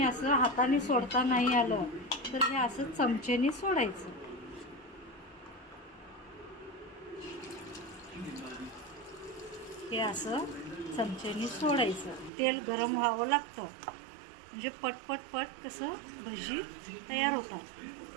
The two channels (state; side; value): drops out; left; at 12.3 s